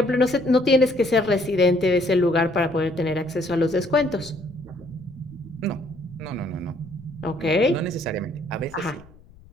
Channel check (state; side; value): noise; left; rumble, 24 dB below the sound